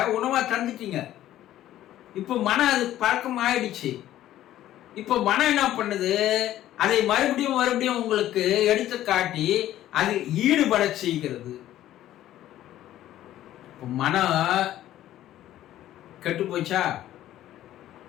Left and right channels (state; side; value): quieter; right; 13.2 dB